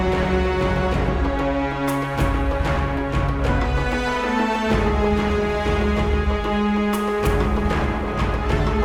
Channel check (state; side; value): identical; both; correlation 1.00